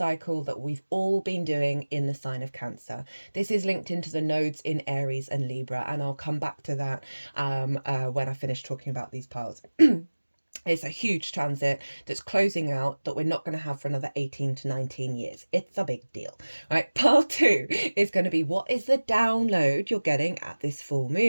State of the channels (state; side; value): inverted; both; correlation -1.00